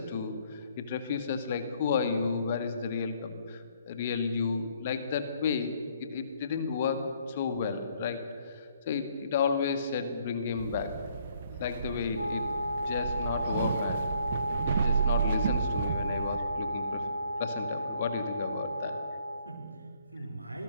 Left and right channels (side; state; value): both; inverted; correlation -0.65